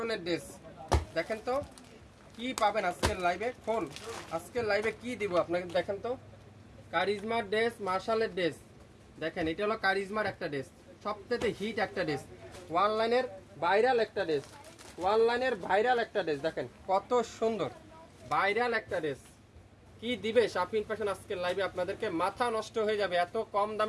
ড্রেস। দেখেন তো কি পাবেন আজকের লাইভে। ফোন আজকের লাইভে কি দিব আপনাকে দেখেন তো। কারিজমা ড্রেস, মাশালের ড্রেস। দেখেন এটা হলো কারিজমার একটা ড্রেস, সবথেকে হিট একটা ড্রেস, অনলাইনের ভাইরাল একটা ড্রেস, অনলাইনের ভাইরাল একটা ড্রেস। দেখেন কত সুন্দর ভাইরাল একটা ড্রেস। কি দিবে শাপিন ফ্যাশন আজকের লাইভে আপনাদেরকে, মাথা নষ্ট হয়ে যাবে। এত কম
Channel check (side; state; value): both; identical; correlation 1.00